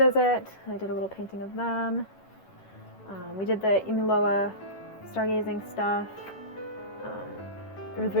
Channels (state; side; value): late; right; 11 ms